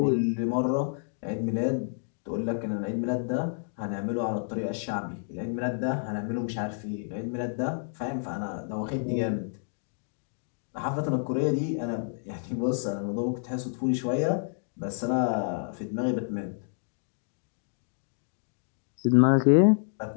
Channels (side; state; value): right; silent; digital silence